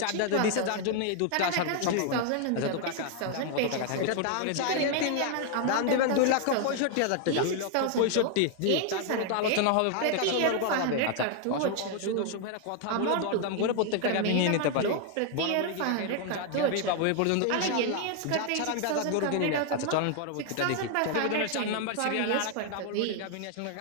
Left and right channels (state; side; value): different; both; correlation 0.00